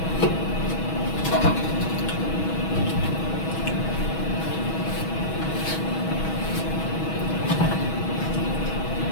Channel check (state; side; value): late; right; 6.2 ms